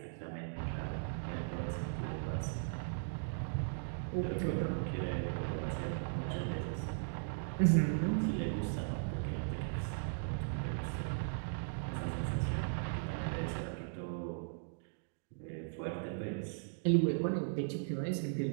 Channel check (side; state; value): left; silent; digital silence